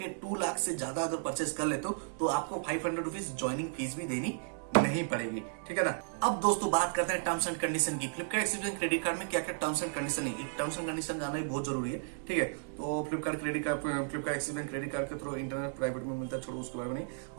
2 लाख से ज्यादा अगर परचेस कर लेते हो तो आपको 500 रुपीज ज्वाइनिंग फीस भी देनी नहीं पड़ेगी, ठीक है ना। अब दोस्तों बात करते हैं टर्म्स एंड कंडीशन की। Flipkart Axis Bank credit card में क्या क्या टर्म्स एंड कंडीशन है, टर्म्स एंड कंडीशन जानना ही बहुत जरूरी है, ठीक है। तो Flipkart Axis Bank credit card के थ्रू इंटरनेट प्राइवेट में मिलता है, छोड़ो उसके बारे में नहीं।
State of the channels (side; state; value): left; silent; digital silence